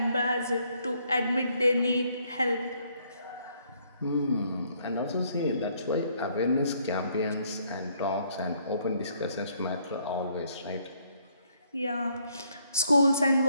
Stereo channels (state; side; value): inverted; both; correlation -0.69